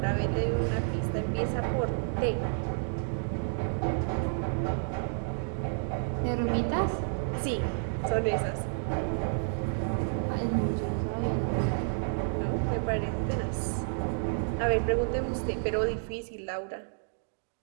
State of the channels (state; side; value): silent; left; digital silence